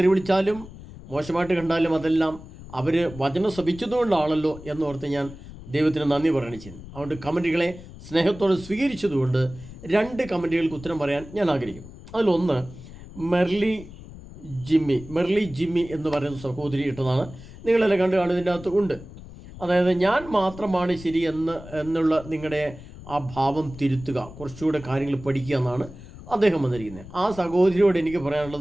വിളിച്ചാലും മോശമായിട്ട് കണ്ടാലും അതെല്ലാം അവർ വചനം ശ്രവിച്ചതുകൊണ്ടാണല്ലോ എന്നോർത്ത് ഞാൻ ദൈവത്തിന് നന്ദി പറയുകയാണ് ചെയ്യുന്നത്. അതുകൊണ്ട് കമൻറ്റുകളെ സ്നേഹത്തോടെ സ്വീകരിച്ചതുകൊണ്ട് 2 കമൻറ്റുകൾക്ക് ഉത്തരം പറയാൻ ഞാൻ ആഗ്രഹിക്കുന്നു. അതിലൊന്ന് മെർലി ജിമ്മി എന്ന് പറയുന്ന സഹോദരി ഇട്ടതാണ്. നിങ്ങളെല്ലാം കണ്ടു കാണുന്നതിൻ്റെ അകത്ത് ഉണ്ട്. അതായത് ഞാൻ മാത്രമാണ് ശരി എന്നുള്ള നിങ്ങളുടെ ആ ഭാവം തിരുത്തുക, കുറച്ചുകൂടെ കാര്യങ്ങൾ പഠിക്കുക എന്നാണ് അദ്ദേഹം വന്നിരിക്കുന്നത്. ആ സഹോദരിയോട് എനിക്ക്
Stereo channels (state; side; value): noise; left; rumble, 16 dB below the sound